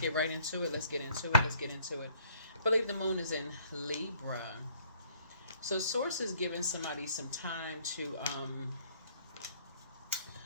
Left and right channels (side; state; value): both; inverted; correlation -0.60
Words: right into it. Let's get into it. Let's get into it. I believe the moon is in Libra. So Source is giving somebody some time to,